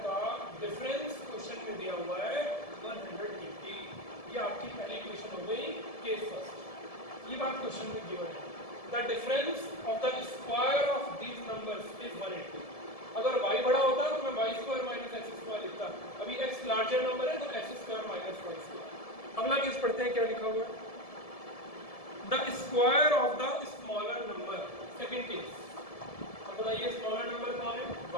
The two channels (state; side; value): late; right; 1.7 ms